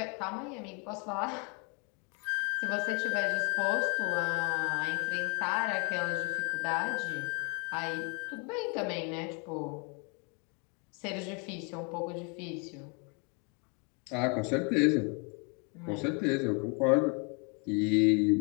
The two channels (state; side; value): quieter; right; 34.8 dB